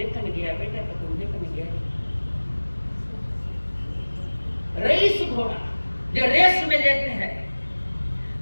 गया बेटा, तो तुम देखने गया। रईस घोड़ा जो रेस में लेते हैं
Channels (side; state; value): both; inverted; correlation -1.00